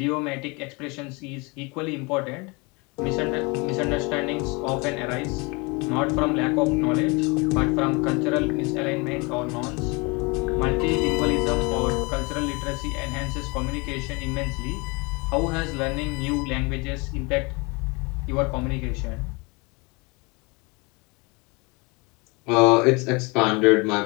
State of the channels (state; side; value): quieter; right; 28.1 dB